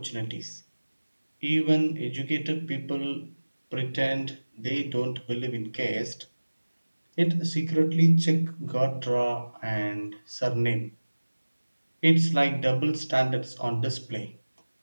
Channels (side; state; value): both; inverted; correlation -1.00